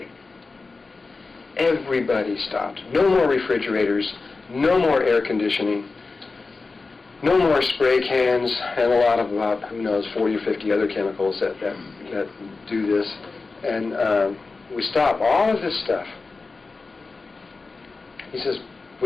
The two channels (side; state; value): right; quieter; 3.9 dB